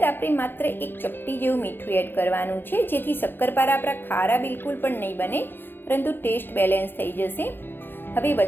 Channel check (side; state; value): right; late; 0.10 ms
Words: આપણે માત્ર 1 ચપટી જેવું મીઠું એડ કરવાનું છે, જેથી શક્કરપારા આપણા ખારા બિલકુલ પણ નહીં બને, પરંતુ ટેસ્ટ બેલેન્સ થઈ જશે. હવે